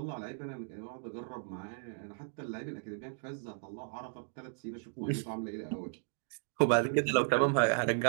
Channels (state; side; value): silent; left; digital silence